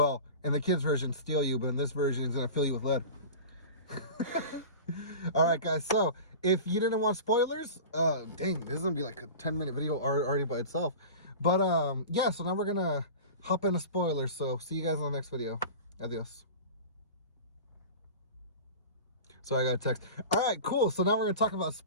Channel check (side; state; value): both; inverted; correlation -0.34